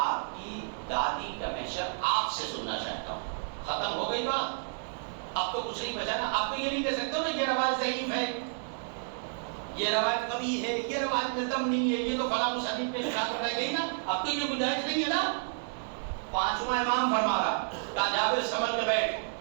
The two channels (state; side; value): silent; left; digital silence